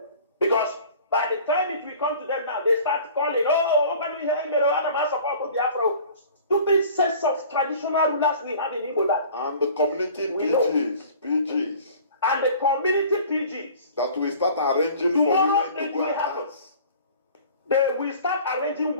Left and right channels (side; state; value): both; inverted; correlation -0.46